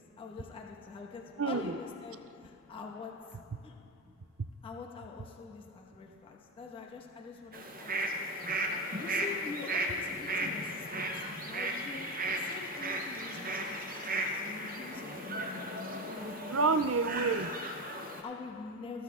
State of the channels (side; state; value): both; normal; correlation 0.16